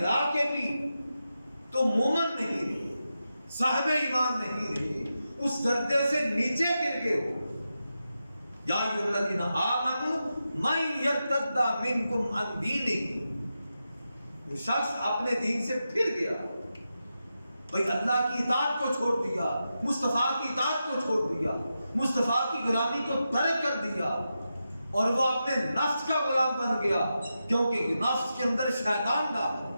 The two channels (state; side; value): inverted; both; correlation -0.89